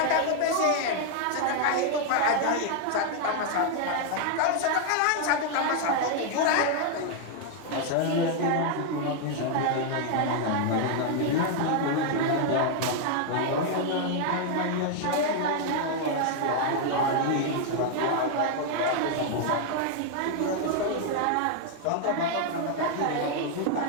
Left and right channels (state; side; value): different; both; correlation 0.00